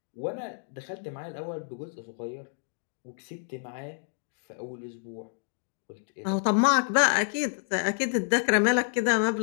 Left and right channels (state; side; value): silent; right; digital silence